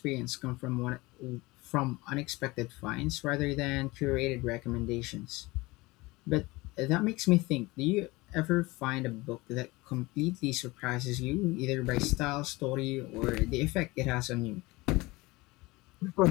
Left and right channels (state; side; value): quieter; right; 22.1 dB